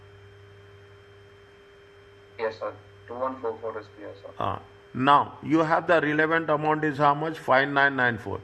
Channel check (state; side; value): identical; both; correlation 1.00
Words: Yes, sir. 2144 is clear, sir. Now, you have the relevant amount is how much? 5994.